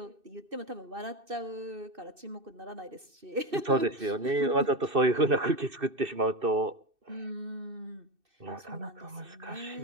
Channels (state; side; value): late; left; 2.6 ms